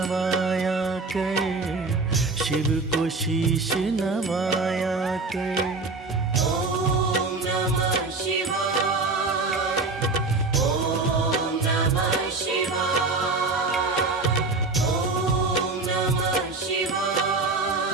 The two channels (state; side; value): quieter; left; 3.7 dB